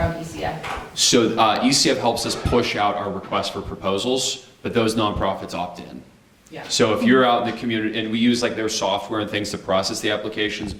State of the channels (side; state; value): both; identical; correlation 1.00